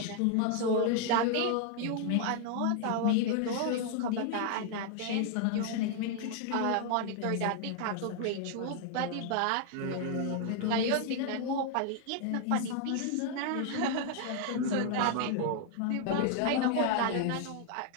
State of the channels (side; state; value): both; different; correlation 0.00